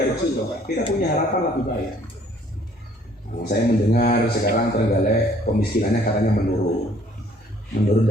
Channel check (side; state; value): both; normal; correlation 0.59